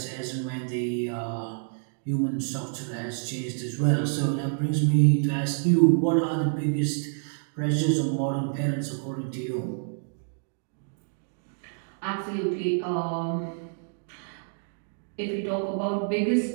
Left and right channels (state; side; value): silent; left; digital silence